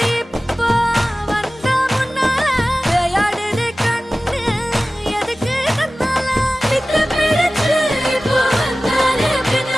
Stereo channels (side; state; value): both; normal; correlation 0.96